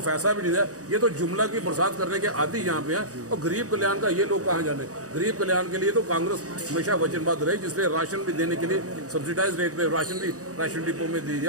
पैसा भी नहीं दिया। ये तो जुमला की बरसात करने के आदि यहाँ पे हैं। और गरीब कल्याण का ये लोग कहाँ जाने? गरीब कल्याण के लिए तो कांग्रेस हमेशा वचनबद्ध रही, जिसलिए राशन भी देने के लिए सब्सिडाइज रेट पे राशन भी राशन डिपो में दे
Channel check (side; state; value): left; late; 0.66 ms